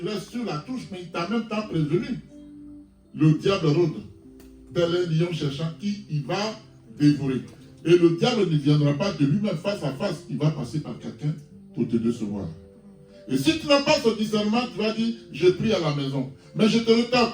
restes sur la touche, mais il t'a même temps prévenu. Le diable rôde, tel un lion cherchant qui il va dévorer. Et le diable ne viendra pas de lui-même face à face, il va passer par quelqu'un pour te décevoir. Et si tu n'as pas ce discernement, tu vas dire, je prie à la maison. Mais je te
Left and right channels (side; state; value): both; identical; correlation 1.00